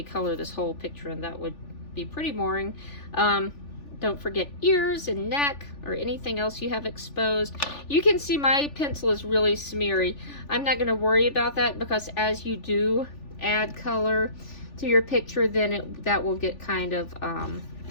color this whole picture, and that would be pretty boring. Don't forget ears and neck or anything else you have exposed. You can see my pencil is really smeary. I'm not going to worry about that, because as you do add color to your picture, then that will get kind of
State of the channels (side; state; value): right; late; 3.4 ms